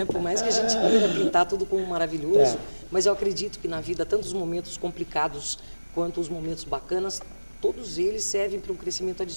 Por mais que a gente queira pintar tudo como maravilhoso, mas eu acredito que na vida, tanto os momentos complicados quanto os momentos bacanas, todos eles servem para um crescimento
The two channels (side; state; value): both; inverted; correlation -1.00